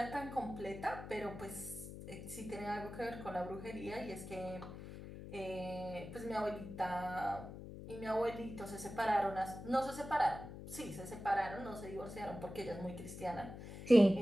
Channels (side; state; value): left; noise; hum, 11 dB below the sound